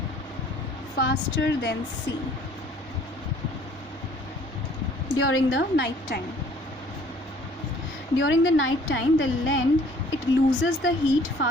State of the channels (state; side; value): normal; both; correlation 0.56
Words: faster than sea during the night time. During the night time, the land, it loses the heat